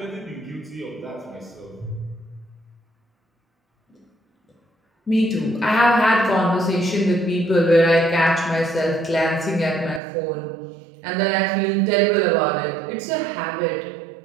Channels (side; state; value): left; drops out; at 10.0 s